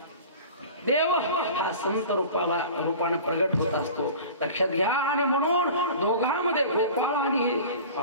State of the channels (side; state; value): both; inverted; correlation -0.39